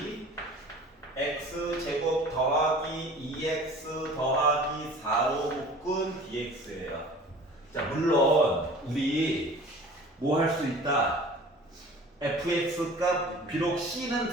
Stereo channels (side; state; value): both; normal; correlation 0.44